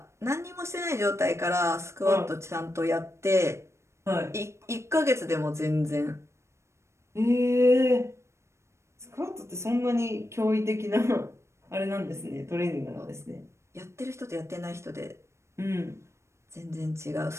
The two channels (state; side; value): late; left; 0.13 ms